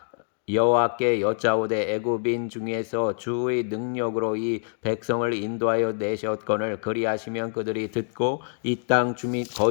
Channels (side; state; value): right; silent; digital silence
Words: 여호와께 여짜오되 애굽인 중에서 주의 능력으로 이 백성을 인도하여 내셨거늘 그리하시면 그들이 듣고 이 땅